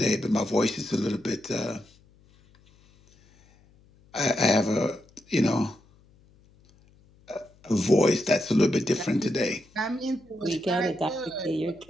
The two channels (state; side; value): noise; left; hum, 30 dB below the sound